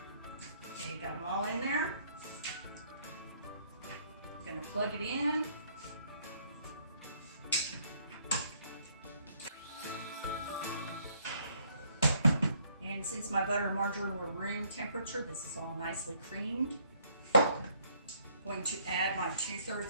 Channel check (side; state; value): both; inverted; correlation -0.66